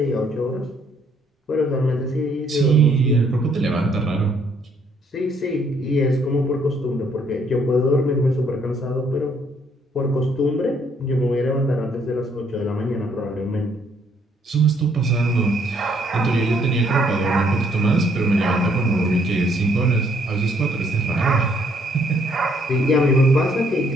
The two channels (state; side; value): normal; both; correlation 0.67